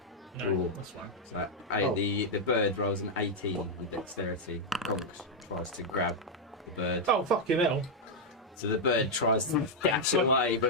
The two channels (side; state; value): both; normal; correlation -0.02